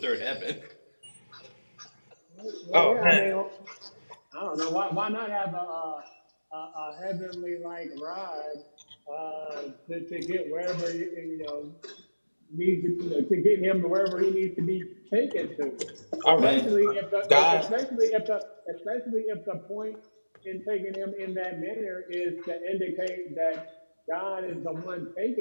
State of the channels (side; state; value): both; inverted; correlation -1.00